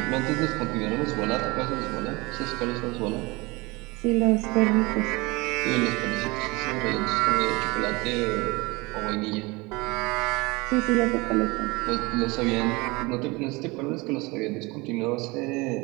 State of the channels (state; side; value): quieter; left; 24.5 dB